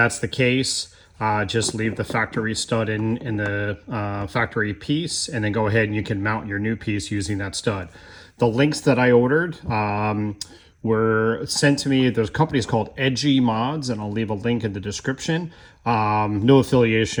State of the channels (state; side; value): identical; both; correlation 1.00